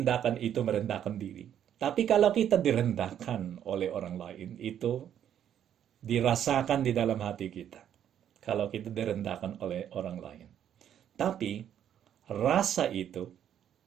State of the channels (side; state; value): left; quieter; 9.9 dB